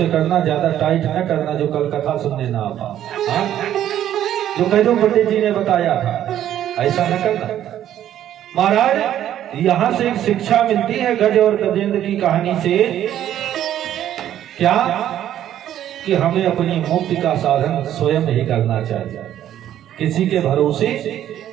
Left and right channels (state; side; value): quieter; left; 11.4 dB